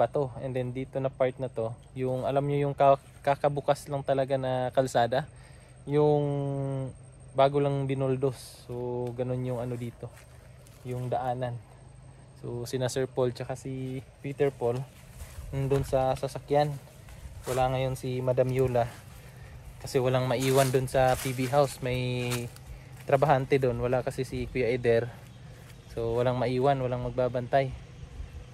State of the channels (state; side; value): identical; both; correlation 1.00